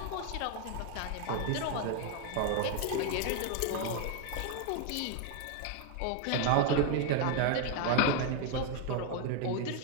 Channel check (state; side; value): different; both; correlation 0.01